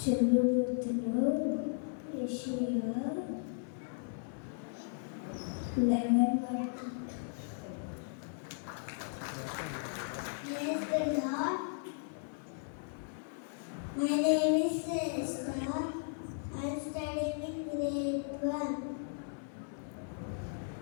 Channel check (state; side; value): silent; right; 54 dB below the other